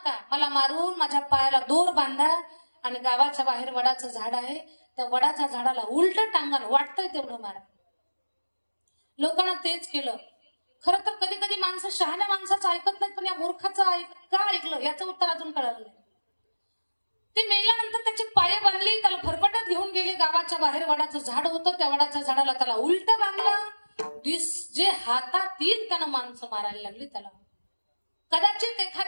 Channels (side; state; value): both; inverted; correlation -1.00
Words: मला मारून माझ्या पायाला दोर बांधा आणि गावाच्या बाहेर वडाचं झाड आहे, त्या वडाच्या झाडाला उलट टांगण वाटतंय तेवढं मारा. लोकांना तेच केलं. खरं तर कधी कधी माणसं शहाण्या माणसाचं ऐकत नाहीत, पण या मूर्खाचं का ऐकलं याचं उत्तर अजून कळालं नाही. ते मेल्यानंतर त्याची पाय बांधली, त्याला फरफटत घेऊन गेले गावाच्या बाहेर. वडाचं झाड होतं, त्या वडाच्या झाडाला त्याला उलट बांधलं. जे हातात येईल त्यानं माणसं मारायला लागली त्याला. कदाचित